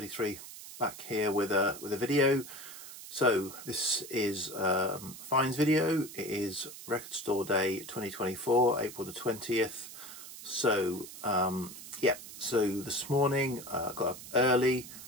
back here with a video. So this is Fines video. It is Record Store Day 2024, April the 20th. So yeah, so this morning got up early,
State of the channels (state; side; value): noise; right; hiss, 13 dB below the sound